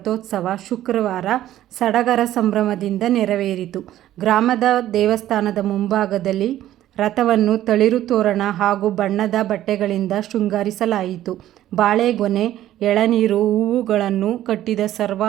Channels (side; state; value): left; quieter; 13.1 dB